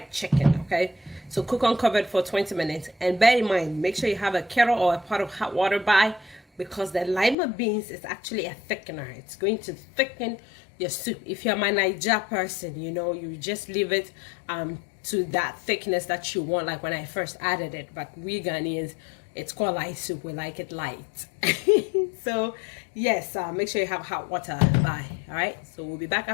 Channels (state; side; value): drops out; right; at 7.4 s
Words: chicken. Okay, so cook uncovered for 20 minutes, and bear in mind, make sure you have a kettle or a pot of hot water by, because the lima beans is actually a thickener. It's going to thicken your soup. If you're my Niger person, you know, you just leave it to that thickness that you want, like when I first added it. But we Ghanaians, it's called light soup. We like it light. So yes, make sure you have hot water by. All right, so we'll be back